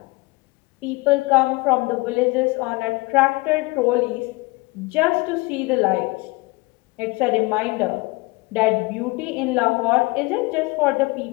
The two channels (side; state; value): right; quieter; 24.4 dB